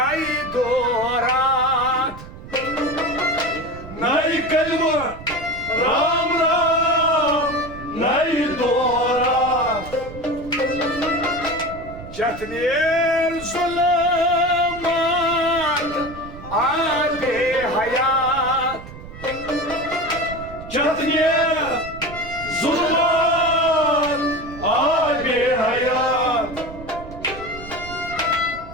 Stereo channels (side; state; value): right; noise; rumble, 14 dB below the sound